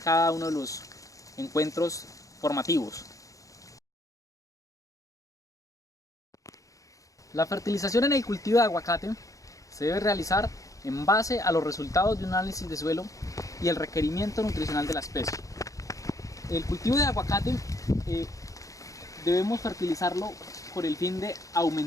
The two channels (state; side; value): late; right; 0.16 ms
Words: uno de los encuentros formativos. La fertilización en el cultivo de aguacate se debe realizar en base a los resultados de un análisis de suelo y el requerimiento nutricional de la especie. El cultivo de aguacate debemos fertilizarlo por el fin de